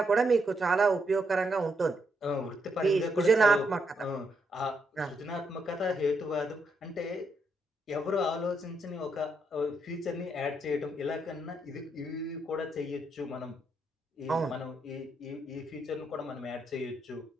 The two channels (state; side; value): normal; both; correlation 0.78